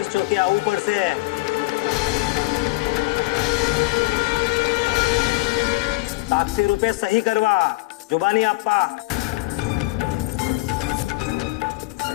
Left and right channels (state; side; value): quieter; right; 21.5 dB